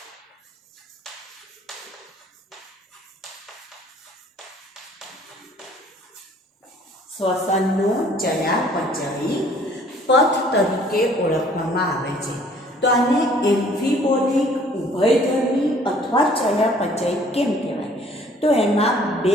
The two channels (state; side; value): normal; both; correlation 0.56